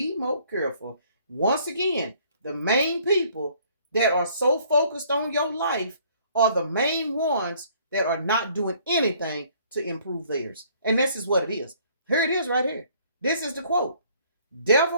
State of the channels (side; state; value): both; inverted; correlation -0.60